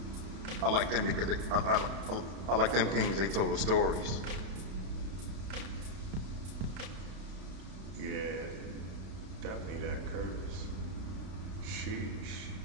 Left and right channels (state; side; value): late; left; 32 ms